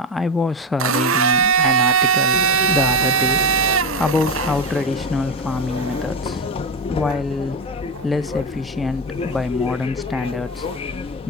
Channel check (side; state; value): both; normal; correlation 0.17